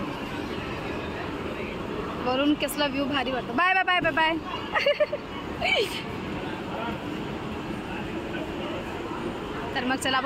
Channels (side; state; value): both; identical; correlation 1.00